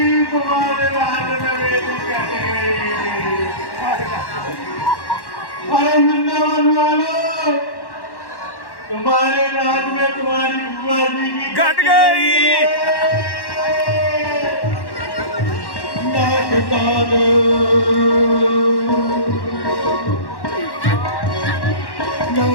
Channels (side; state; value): right; late; 1.1 ms